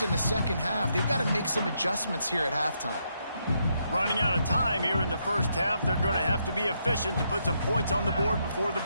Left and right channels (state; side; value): inverted; both; correlation -0.78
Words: in the second half, they've got to make some adjustments here at halftime. Running out of time here in the first half. They're going to have to be efficient to put some points on the board before the